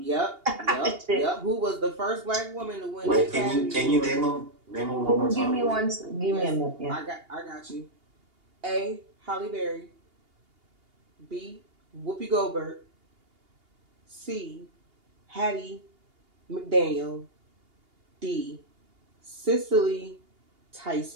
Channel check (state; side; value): late; left; 2.8 ms